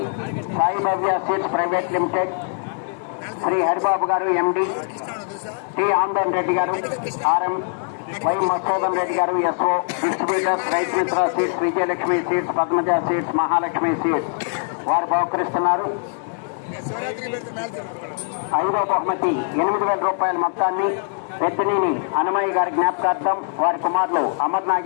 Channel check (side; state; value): right; silent; 64 dB below the other